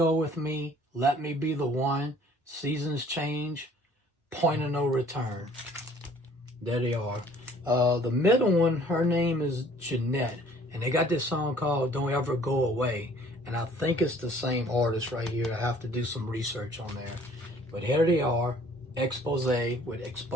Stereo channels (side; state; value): both; normal; correlation 0.55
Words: With Me, Let Me Be the One, Seasons Change, Point of No Return. There they are. The middle one, her name is Jeanette. And they got this song called Don't Ever Go Away. And I think it's the same artist right here. I have to do some research on there. But here they are. Expose with